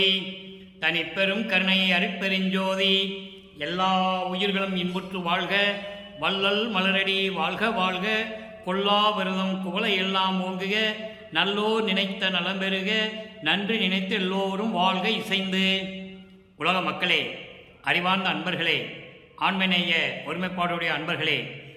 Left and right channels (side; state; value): both; identical; correlation 1.00